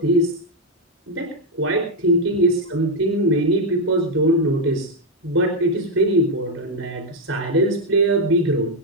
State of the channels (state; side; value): normal; both; correlation 0.02